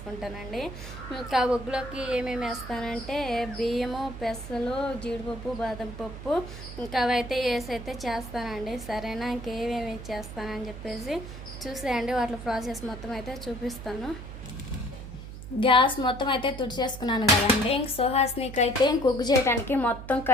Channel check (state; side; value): noise; right; hum, 11 dB below the sound